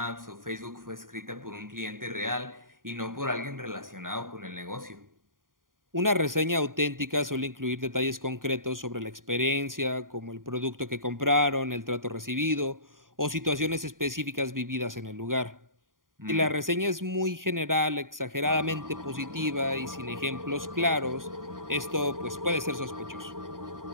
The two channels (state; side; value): late; left; 0.90 ms